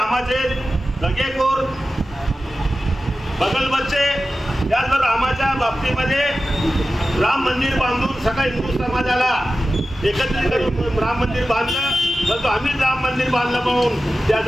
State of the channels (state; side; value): normal; both; correlation 0.94